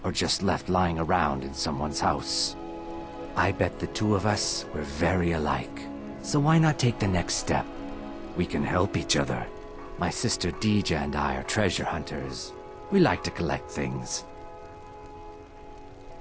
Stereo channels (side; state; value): both; identical; correlation 1.00